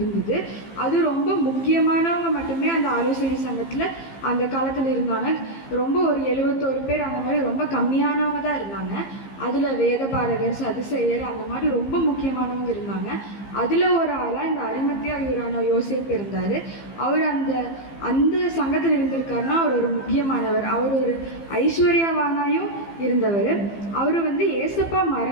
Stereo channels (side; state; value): right; late; 15 ms